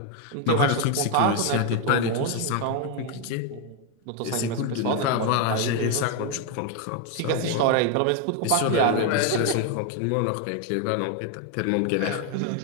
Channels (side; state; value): both; different; correlation 0.01